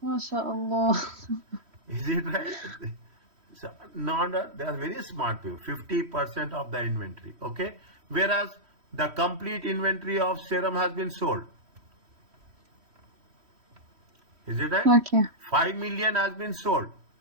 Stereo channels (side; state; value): left; late; 3.1 ms